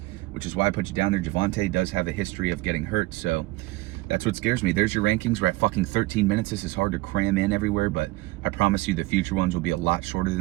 which is why I put you down there. Javonte does have a history of getting hurt, so that's what scares me. There's your rankings. We're at fucking 13 minutes. This is hard to cram in everywhere, but I promise you the future ones will be a lot shorter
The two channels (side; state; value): left; quieter; 20.3 dB